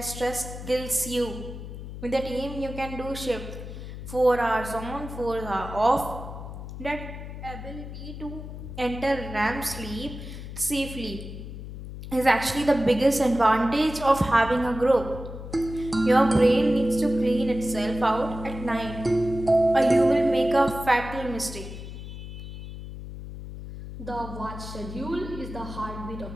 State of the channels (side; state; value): left; noise; hum, 10 dB below the sound